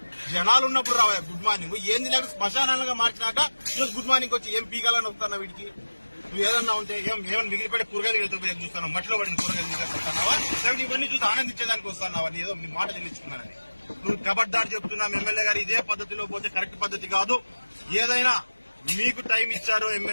జనాలు ఉన్నప్పుడు రావా గుడ్ మార్నింగ్? ఏంది నాకు శ్మశానాలుగా మార్చినాక ఈరోజు గుడ్ మార్నింగ్ వచ్చి ఏం పీకాలని వస్తానా వీడికి? నువ్వు ఏదన్నా ఉంటే ఏమైనా మిగిలిపడే కూరగాయలు చూస్తాను, మట్టిలో పడిన కూరగాయలు వస్తున్నావా, లేకపోతే ఇవన్నీ చూసి ఆనందించేదానికి వస్తున్నావా? ఏదో నీ మాట చెల్లించుకున్నానని నువ్వు కబడ్దారు చెప్తున్నాం. ఎమ్మెల్యే గారు ఇదే పద్ధతిలో పోతే కరెక్ట్ పద్ధతి కాదు. ఏదైనా మీకు టైం ఇచ్చారు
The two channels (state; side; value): inverted; both; correlation -1.00